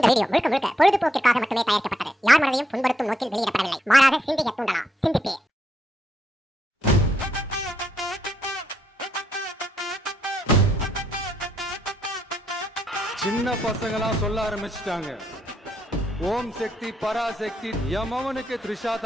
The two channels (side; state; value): both; normal; correlation 0.77